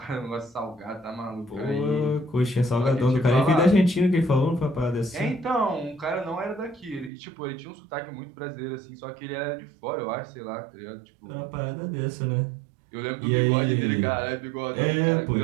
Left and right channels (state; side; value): drops out; left; at 7.1 s